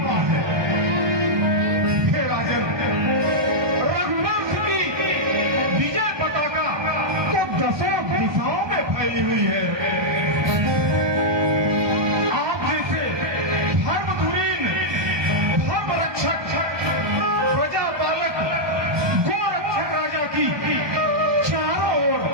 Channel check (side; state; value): left; late; 1.2 ms